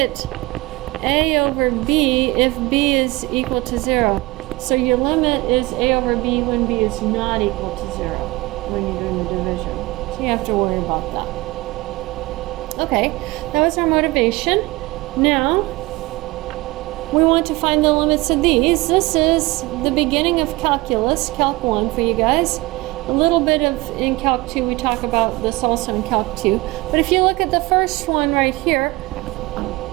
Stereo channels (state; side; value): quieter; left; 21.4 dB